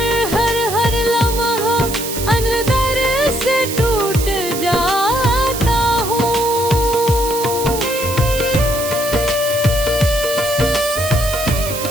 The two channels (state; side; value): noise; right; hiss, 7 dB below the sound